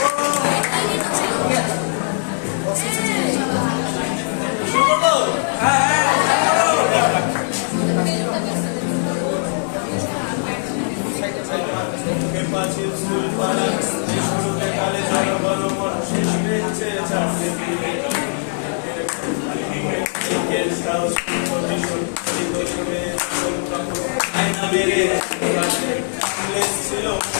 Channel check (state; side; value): silent; right; 65 dB below the other